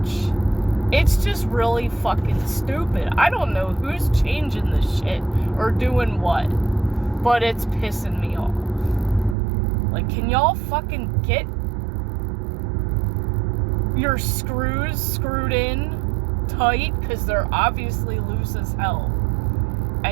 It's just really fucking stupid. I don't know who's changing this shit or doing what, but it's pissing me off. Like, can y'all fucking get your screws screwed in tight? Because they're obviously loose as hell.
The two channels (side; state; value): left; drops out; at 9.3 s